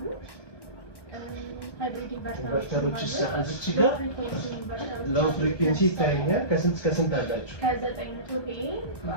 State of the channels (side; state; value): right; late; 1.1 ms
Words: ሃይብሪድ ኢንቨርተሮች እዚች ጋር ሎው ፍሪኩዌንሲ ይታየኛል። ከስንት እስከ ስንት አላችሁ? ከ900 ቪኤ